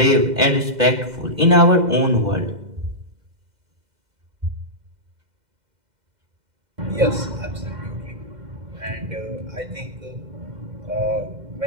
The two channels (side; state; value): left; late; 2.0 ms